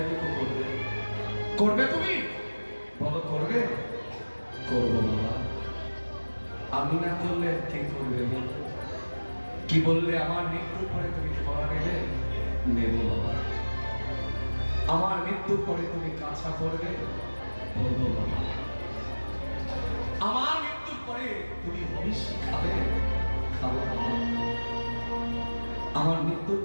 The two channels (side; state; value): both; inverted; correlation -1.00